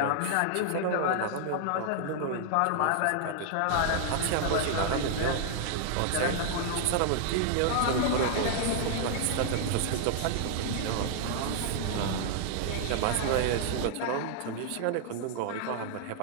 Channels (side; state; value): both; different; correlation -0.01